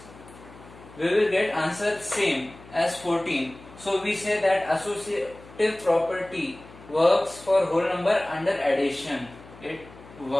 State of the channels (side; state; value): left; noise; hum, 20 dB below the sound